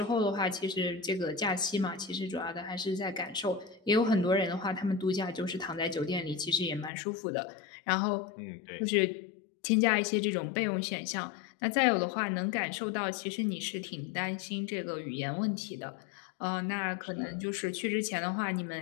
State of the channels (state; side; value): drops out; right; at 6.9 s